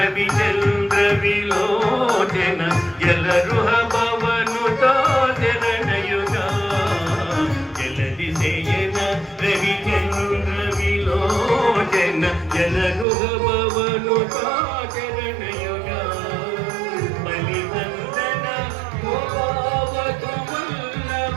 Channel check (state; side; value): drops out; left; at 13.1 s